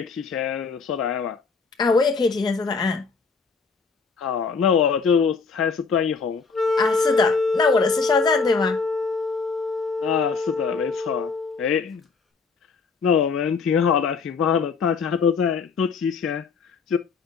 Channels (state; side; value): quieter; right; 4.9 dB